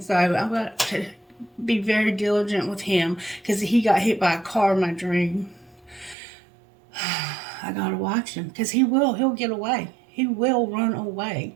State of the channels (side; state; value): left; drops out; at 6.2 s